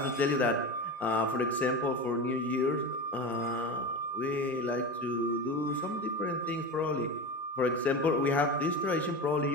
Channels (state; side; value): normal; both; correlation 0.25